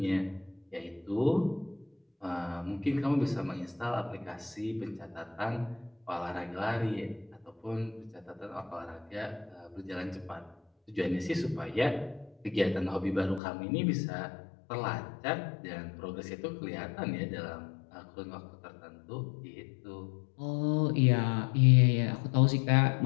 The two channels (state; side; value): drops out; right; at 13.4 s